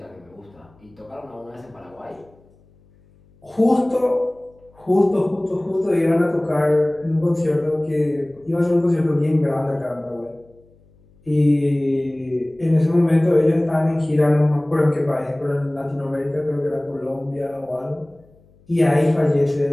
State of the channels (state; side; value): noise; left; hum, 29 dB below the sound